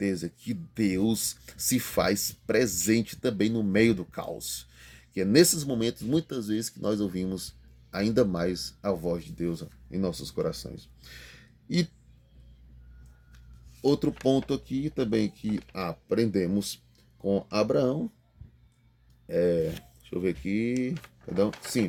que Deus se faz presente também no meio do caos. Que é nesses momentos, muitas vezes, que nós ouvimos ainda mais a voz de Deus em nossos corações. E outro ponto aqui também que aprendemos com Abraão, deixa eu ver aqui, perdão,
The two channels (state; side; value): identical; both; correlation 1.00